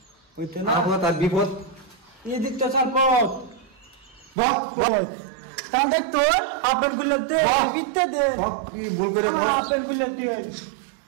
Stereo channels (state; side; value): drops out; left; at 4.4 s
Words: হইতে না আপদ আর বিপদ এদিক তো সাল পথ বক তাহলে দেখ তো আপন গুলো দে বক। বিতে দে সব কি ভুল করে বল আপন গুলো দে